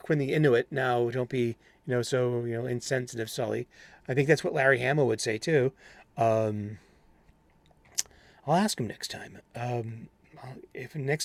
the Inuit. Now, don't be, so, insensitive, Sully. I think that's what Larry Hama would say too. Um, I'll ask him next time. If next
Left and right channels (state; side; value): identical; both; correlation 1.00